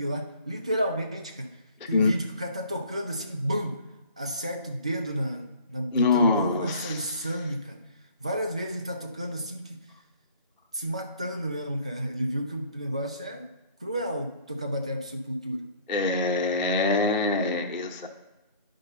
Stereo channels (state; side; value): inverted; both; correlation -0.53